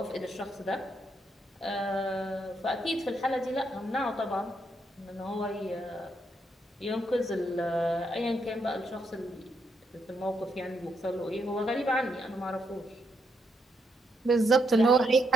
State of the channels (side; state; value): both; normal; correlation 0.78